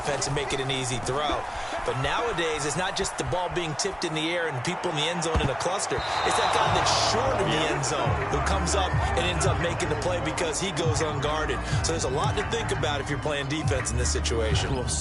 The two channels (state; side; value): identical; both; correlation 1.00